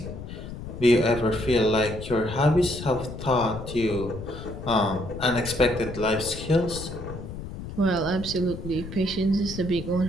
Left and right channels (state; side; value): noise; left; rumble, 10 dB below the sound